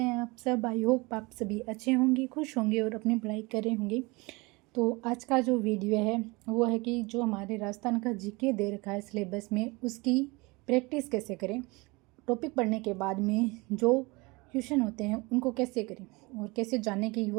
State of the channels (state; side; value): quieter; left; 25.0 dB